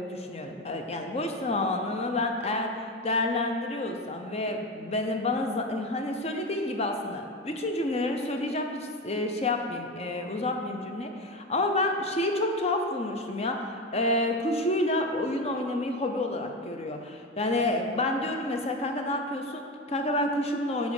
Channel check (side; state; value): both; normal; correlation 0.21